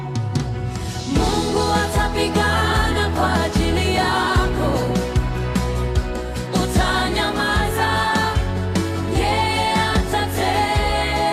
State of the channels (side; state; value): both; identical; correlation 1.00